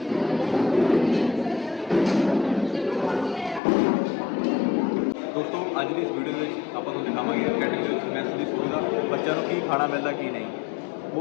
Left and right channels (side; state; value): right; drops out; at 3.6 s